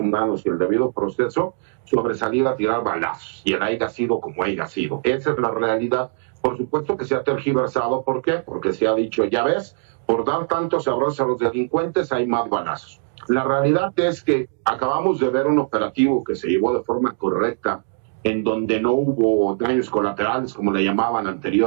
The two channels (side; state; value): left; silent; digital silence